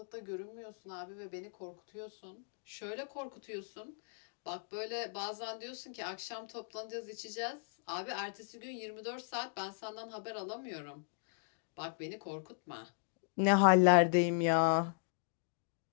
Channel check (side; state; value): right; silent; digital silence